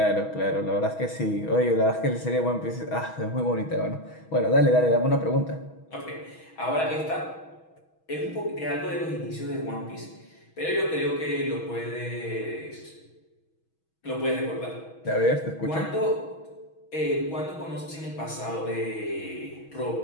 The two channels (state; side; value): late; right; 6.3 ms